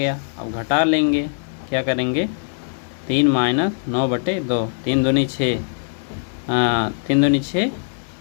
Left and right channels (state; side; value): silent; right; digital silence